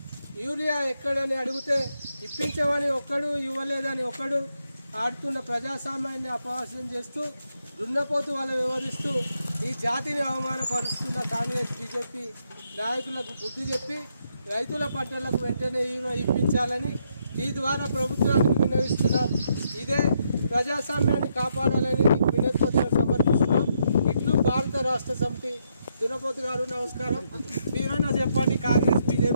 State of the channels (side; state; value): both; inverted; correlation -0.76